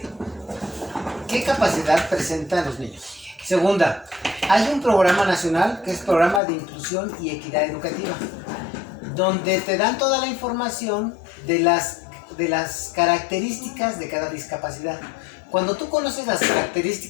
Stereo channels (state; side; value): drops out; right; at 6.4 s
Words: capacidad presentan los niños. Segunda, hay un programa nacional que es Programa de Inclusión y Equidad Educativa, donde te dan toda la información de las características de cada discapacidad. Cuando tú conoces las